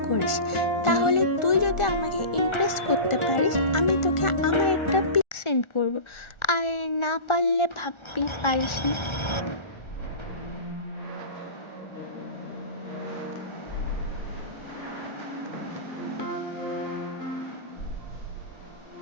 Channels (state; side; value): late; right; 1.4 ms